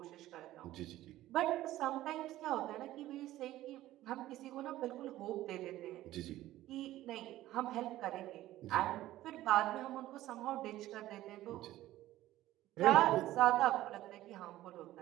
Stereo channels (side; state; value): left; quieter; 15.1 dB